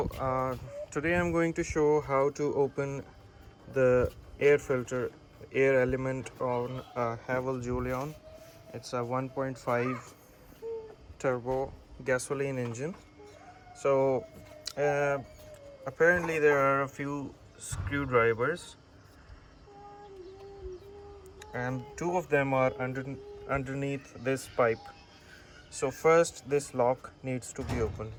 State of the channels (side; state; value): both; identical; correlation 1.00